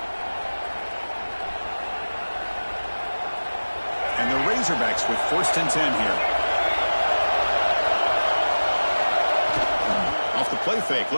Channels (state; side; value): inverted; both; correlation -1.00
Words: And the Razorbacks with 1st and 10 here. Off the play fake,